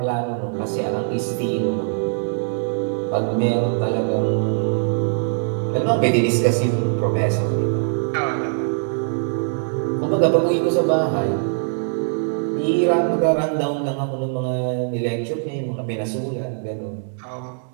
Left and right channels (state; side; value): silent; left; digital silence